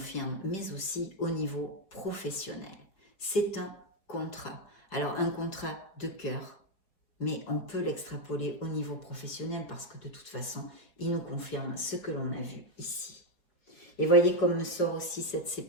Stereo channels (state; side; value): late; right; 4.9 ms